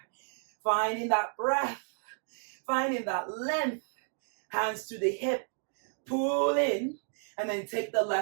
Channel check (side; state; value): left; silent; 57 dB below the other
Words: Finding that breath, finding that length. Hands to the hip. Pull in, and then take the